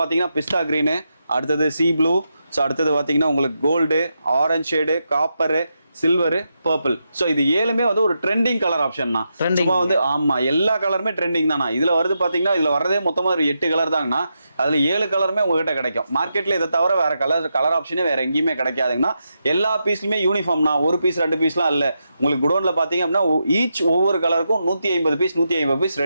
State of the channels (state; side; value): inverted; both; correlation -0.85